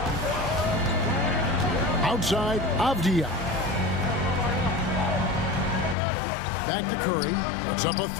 Outside, Avdia. Back to Curry. Puts up a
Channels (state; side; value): drops out; right; at 6.0 s